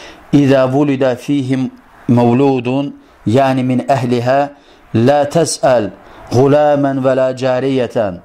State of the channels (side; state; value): both; identical; correlation 1.00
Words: İzə vulidə fihim məvludun, yəni min əhlihə, lə təsəl غuləmən və lə cəriyətən,